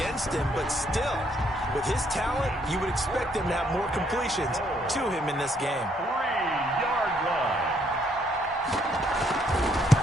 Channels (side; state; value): both; normal; correlation 0.70